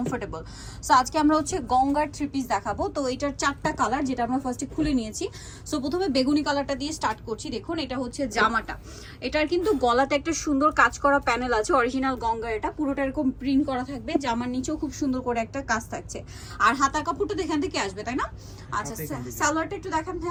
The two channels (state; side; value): identical; both; correlation 1.00